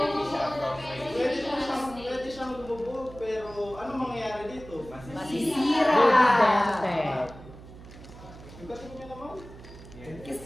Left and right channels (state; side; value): noise; right; hum, 17 dB below the sound